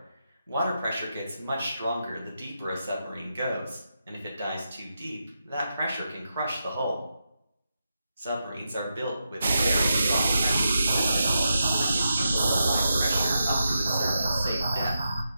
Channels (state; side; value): inverted; both; correlation -0.87